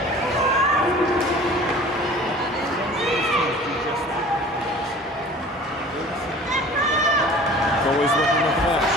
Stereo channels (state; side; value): normal; both; correlation 0.44